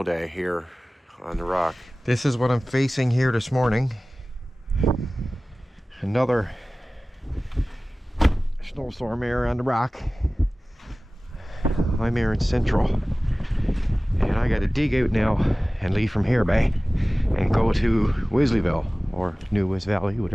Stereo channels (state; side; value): normal; both; correlation 0.98